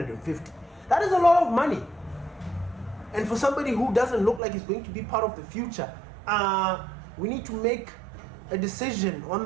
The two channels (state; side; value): drops out; left; at 4.4 s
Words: That is a lot of money. And for somebody who doesn't look like he's going to be part of the future, we need to make a decision on